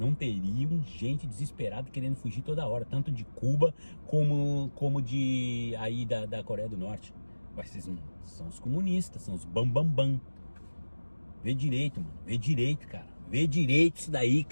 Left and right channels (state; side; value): inverted; both; correlation -1.00